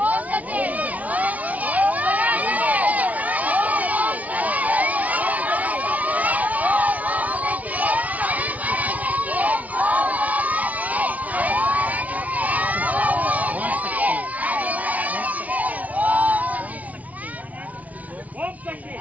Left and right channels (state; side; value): late; left; 0.071 ms